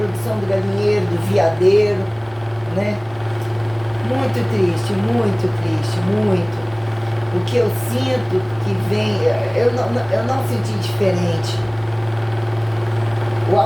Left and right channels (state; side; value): noise; right; rumble, 25 dB below the sound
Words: do galinheiro, do viadeiro, né? Muito triste, muito. O que eu sinto que vem, eu não senti diferente. O